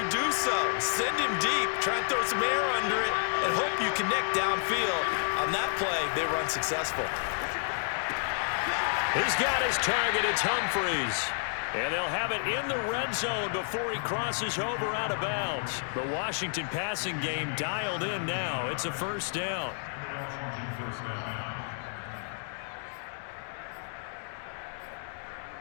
do so. Send him deep, try and throw some air under it, and hope you connect downfield. On that play, they run successful. He's got his target. It's Humphreys. And they'll have it in the red zone before he crosses over out of bounds. The Washington passing game dialed in now. It's a 1st down. Washington first down.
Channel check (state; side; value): silent; right; 56 dB below the other